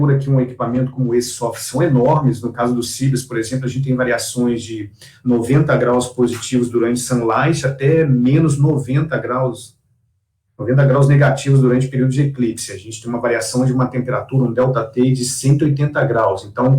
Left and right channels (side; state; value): both; identical; correlation 1.00